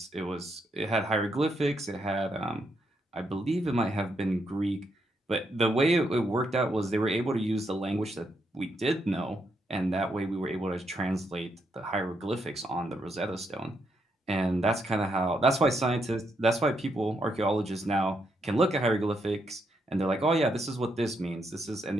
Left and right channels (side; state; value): both; normal; correlation 0.78